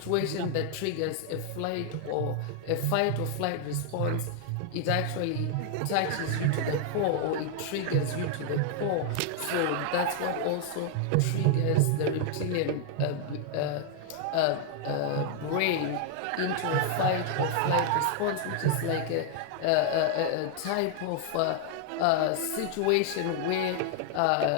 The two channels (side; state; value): both; different; correlation 0.00